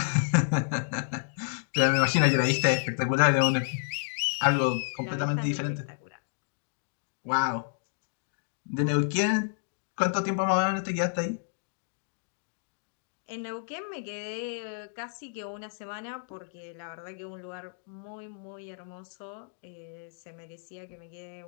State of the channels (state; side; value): silent; right; digital silence